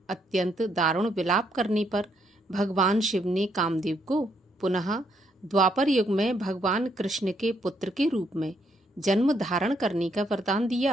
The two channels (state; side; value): normal; both; correlation 0.73